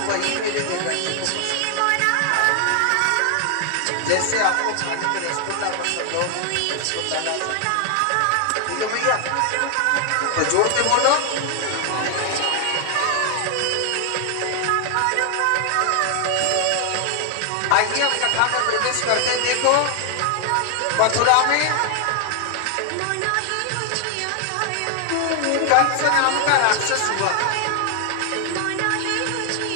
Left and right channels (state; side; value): different; both; correlation 0.00